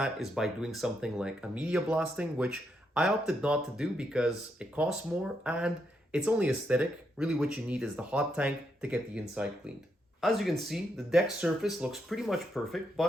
is by doing something like a media blasting, which I opted not to do because it costs more and it's only aesthetic. Really what you need is the hot tank to get the inside cleaned. As you can see, the deck surface looks pretty much perfect,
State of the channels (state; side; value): normal; both; correlation 0.80